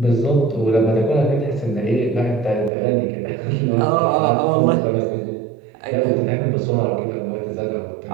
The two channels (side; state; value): left; drops out; at 2.7 s